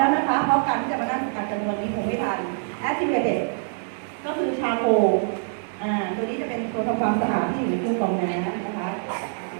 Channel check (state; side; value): silent; left; digital silence